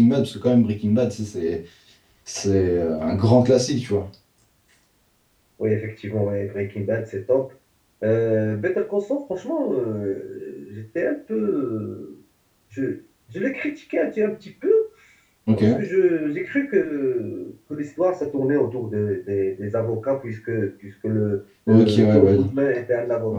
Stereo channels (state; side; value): identical; both; correlation 1.00